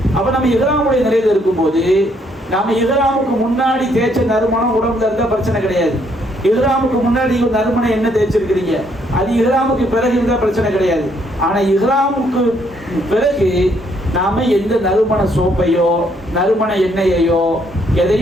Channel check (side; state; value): both; normal; correlation 0.70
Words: அப்ப நம்ம இஹ்ராமுடைய நிலையில இருக்கும்போது நாம இஹ்ராமுக்கு முன்னாடி தேய்ச்ச நறுமணம் உடம்புல இருந்தா பிரச்சனை கிடையாது. இஹ்ராமுக்கு முன்னாடி நறுமணம் என்ன தேய்ச்சிருக்கிறீங்க, அது இஹ்ராமுக்கு பிறகு இருந்தா பிரச்சனை கிடையாது. ஆனா இஹ்ராமுக்கு பிறகு நாம எந்த நறுமண சோப்பையோ நறுமண எண்ணெயையோ